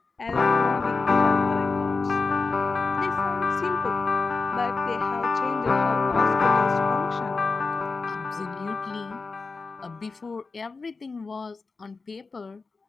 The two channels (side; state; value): right; quieter; 4.2 dB